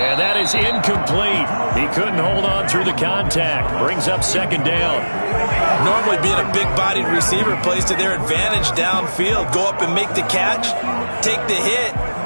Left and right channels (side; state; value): both; inverted; correlation -1.00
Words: that is incomplete. He couldn't hold on through the contact. Brings up second down. Normally being a big-bodied receiver plays to their advantage downfield. Go up and make the catch, take the hit,